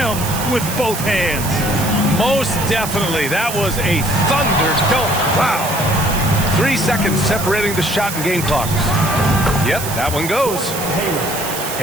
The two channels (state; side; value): noise; right; hiss, 7 dB below the sound